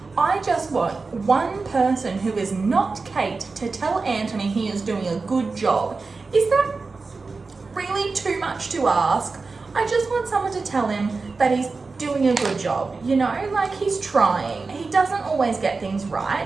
I just want one person who is not Kate to tell Anthony he is doing a good job. Is that really too much to ask? I just want someone to tell him that he's doing a good job, you know? Like, he's trying. He doesn't always get things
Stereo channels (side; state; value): left; quieter; 4.1 dB